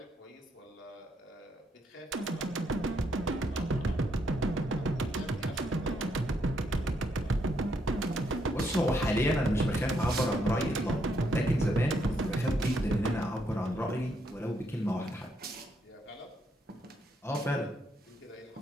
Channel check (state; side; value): normal; both; correlation 0.75